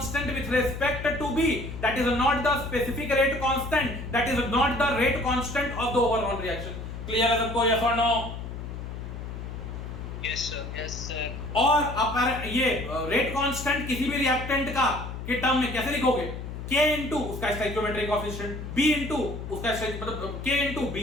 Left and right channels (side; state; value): left; noise; hum, 8 dB below the sound